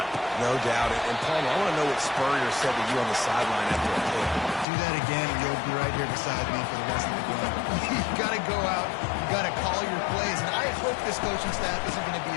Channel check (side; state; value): right; drops out; at 4.7 s